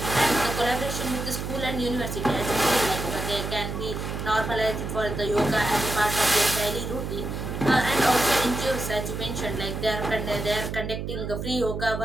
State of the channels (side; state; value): right; noise; hum, 5 dB below the sound